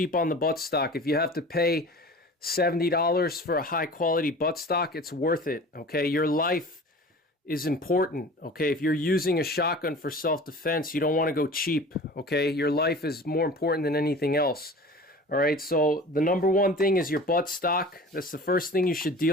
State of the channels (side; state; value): both; normal; correlation 0.40